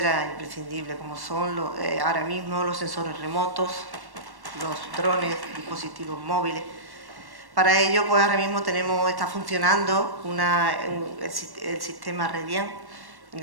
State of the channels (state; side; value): late; left; 1.1 ms